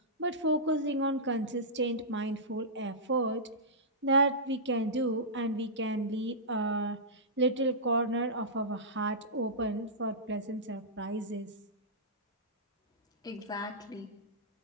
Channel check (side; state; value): both; normal; correlation -0.15